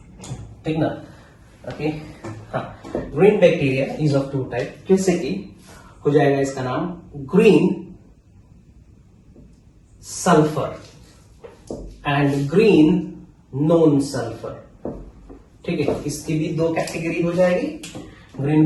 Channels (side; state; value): both; identical; correlation 1.00